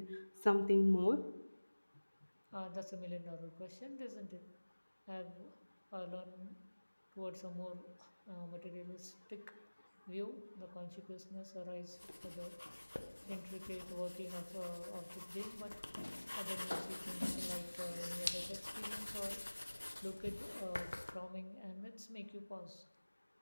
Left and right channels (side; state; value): both; inverted; correlation -1.00